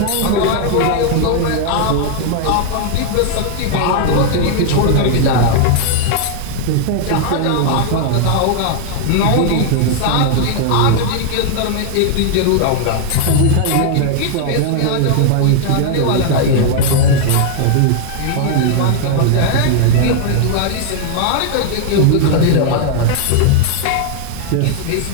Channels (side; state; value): both; different; correlation 0.00